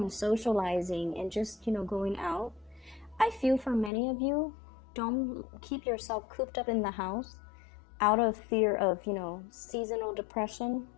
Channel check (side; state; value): right; drops out; at 3.9 s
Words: socializing, and just, you know, going out. I feel for many of you, don't keep yourself cooped up in the house out of fear of, you know, seasonal depression.